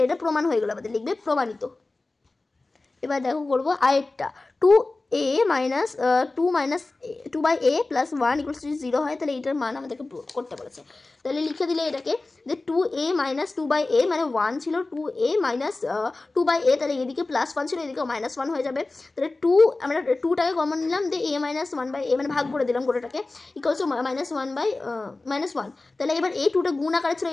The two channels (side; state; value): right; quieter; 3.3 dB